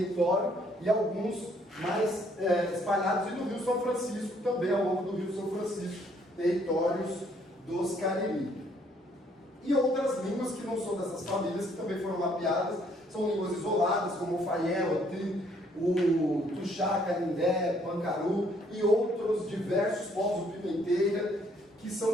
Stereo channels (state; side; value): normal; both; correlation 0.66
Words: e alguns mais espalhados, e no Rio São Francisco também, ao longo do Rio São Francisco, territórios dos Cariri. E outras línguas que não são dessas famílias, que também foram mapeadas, são línguas isoladas, como o Faiel, o Tuxá, Canindé, Pancaru e outros diversos povos do Pimenteira, que